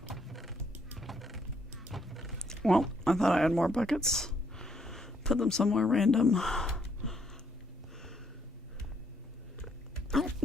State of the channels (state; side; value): normal; both; correlation 0.71